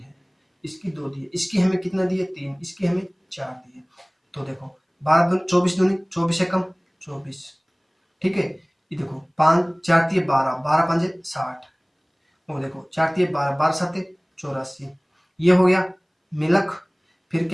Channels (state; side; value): identical; both; correlation 1.00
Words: इसकी 2 दी है, इसकी हमें कितना दी है 3, इसकी हमें 4 दी है। तो देखो 12 दूनी 24 दूनी 24 एकम 24। ठीक है, ये देखो 5 4 दिए 12, 12 5 60, और देखो 4 दिए 12, 12 7 84, ये हो गया मिल्क। फिर